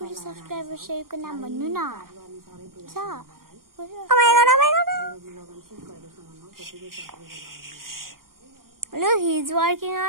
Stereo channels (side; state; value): left; late; 0.91 ms